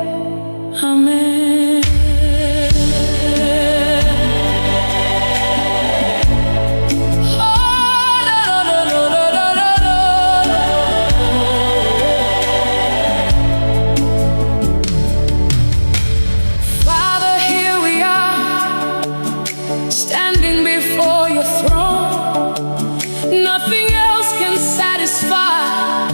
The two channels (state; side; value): inverted; both; correlation -1.00